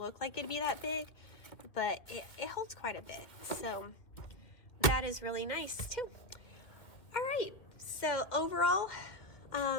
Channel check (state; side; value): late; right; 2.2 ms